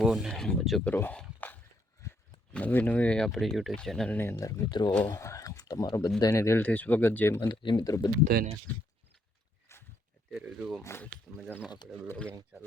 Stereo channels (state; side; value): normal; both; correlation 0.73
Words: ને મજો કરો. નવી આપણી યુટ્યુબ ચેનલની અંદર મિત્રો તમારો બધાને દિલથી સ્વાગત. જય માતાજી મિત્રો બધાને. અત્યારે જુઓ મસ્ત મજાનો આપણે બ્લોગિંગ